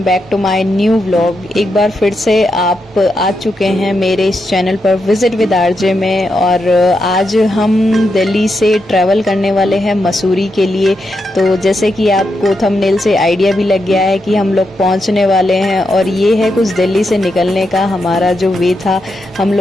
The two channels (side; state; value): both; normal; correlation 0.84